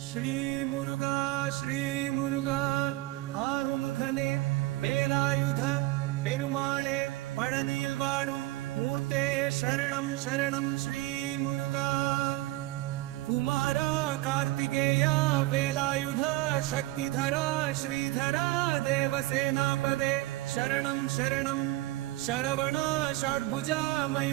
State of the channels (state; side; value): quieter; left; 18.2 dB